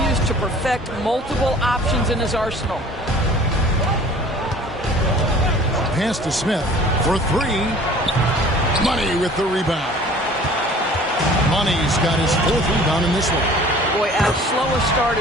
to perfect multiple options in his arsenal. Pass to Smith for 3. Money with the rebound. Money's got his 4th rebound in this one. Boy, as slow a start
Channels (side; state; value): both; normal; correlation 0.48